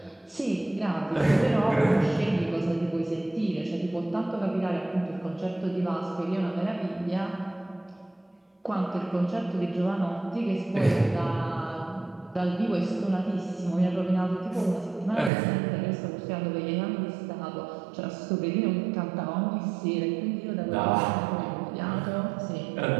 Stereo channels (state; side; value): drops out; left; at 15.3 s